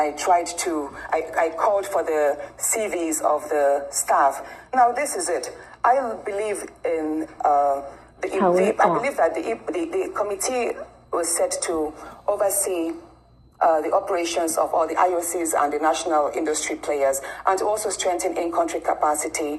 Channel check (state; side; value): identical; both; correlation 1.00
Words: called for the CVs of the staff. Now, this is it. I believe in I believe that the committee was set to oversee the operations of all the IOCs and the national industry players, and to also strengthen in-country